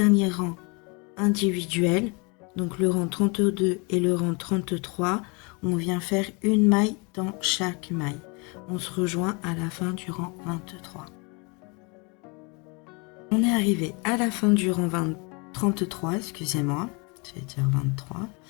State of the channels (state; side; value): quieter; right; 30.8 dB